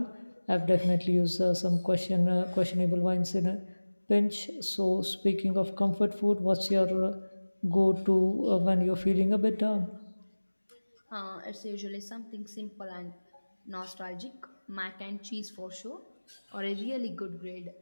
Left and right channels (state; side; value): inverted; both; correlation -1.00